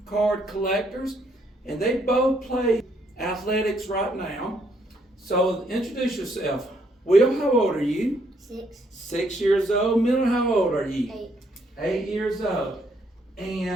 card collectors, and they both play athletics right now. So introduce yourself. Will, how old are you? 6. 6 years old. Miller, how old are you? 8. 8 years old.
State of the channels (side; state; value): both; normal; correlation 0.71